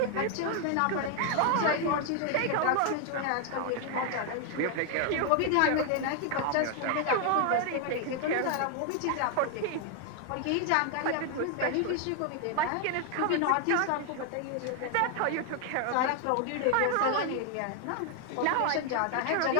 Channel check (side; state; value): both; different; correlation 0.00